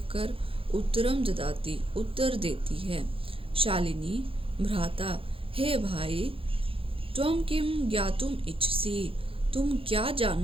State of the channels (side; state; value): left; late; 0.27 ms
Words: उत्तरम ददाति उत्तर देती है। शालिनी भ्राता हे भाई, त्वं किम ज्ञातुम इच्छसि, तुम क्या